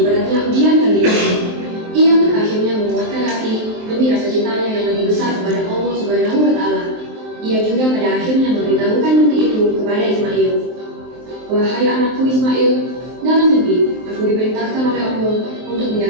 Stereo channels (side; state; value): left; late; 23 ms